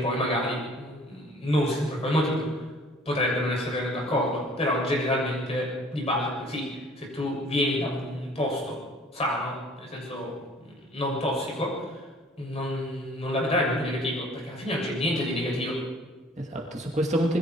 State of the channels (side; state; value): both; normal; correlation 0.53